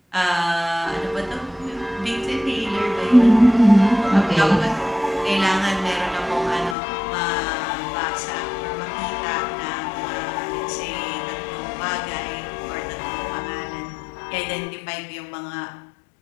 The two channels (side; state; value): right; drops out; at 6.8 s